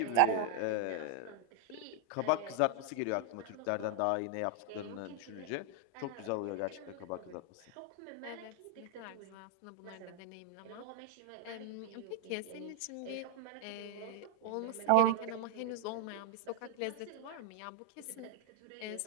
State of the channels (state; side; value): different; both; correlation 0.00